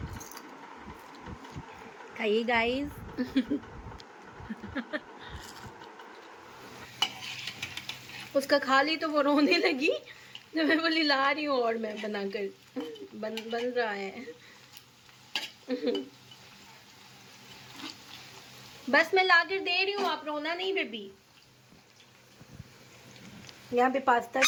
खाइए गाइस। उसका खा ली तो वो रोने लगी, जब मैं बोली ला रही हूँ और मैं बनाकर बन रहा है। बस मैं लाकर दे रही हूँ, आप रोना नहीं बेबी। यहाँ पे पास्ता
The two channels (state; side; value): identical; both; correlation 1.00